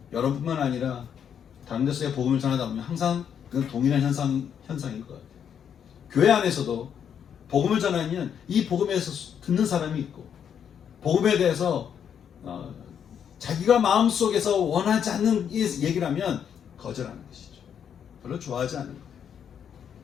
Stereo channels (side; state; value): right; quieter; 8.2 dB